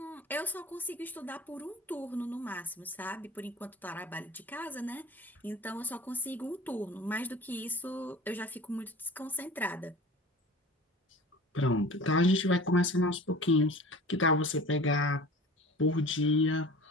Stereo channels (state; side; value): normal; both; correlation 0.41